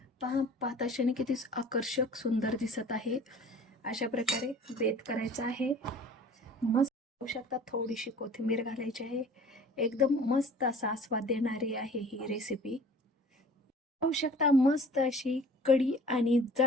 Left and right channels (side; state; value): both; normal; correlation 0.47